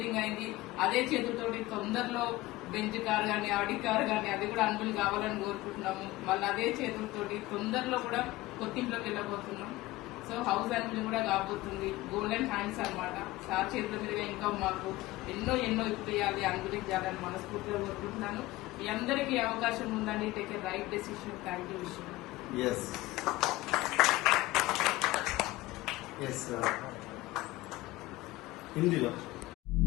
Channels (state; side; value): quieter; right; 18.6 dB